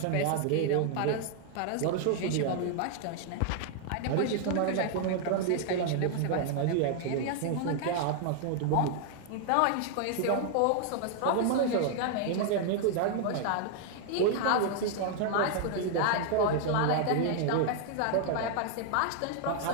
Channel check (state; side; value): different; both; correlation 0.00